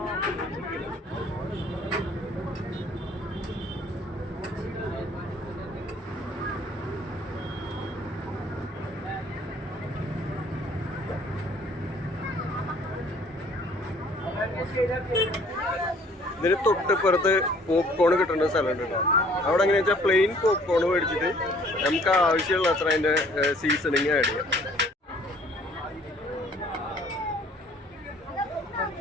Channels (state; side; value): normal; both; correlation 0.57